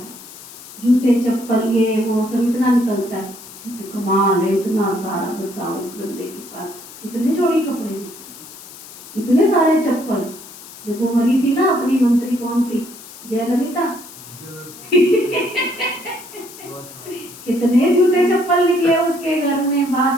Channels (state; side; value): noise; left; hiss, 17 dB below the sound